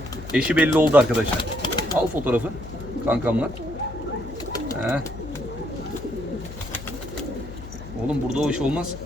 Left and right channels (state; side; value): noise; left; hum, 12 dB below the sound